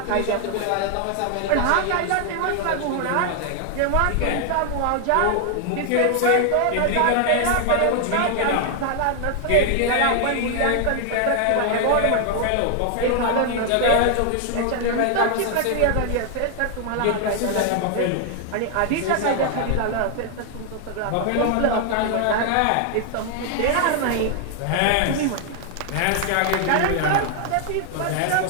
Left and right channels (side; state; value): both; different; correlation 0.00